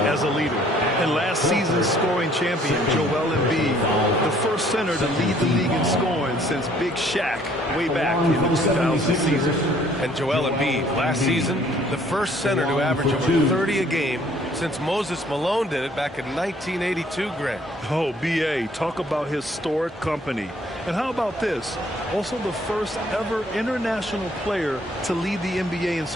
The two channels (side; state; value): both; normal; correlation 0.60